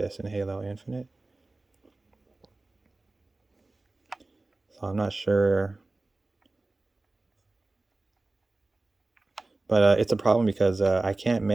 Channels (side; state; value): left; quieter; 3.1 dB